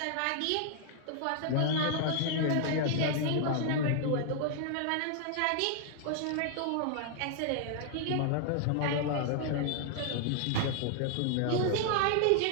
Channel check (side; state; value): both; different; correlation 0.00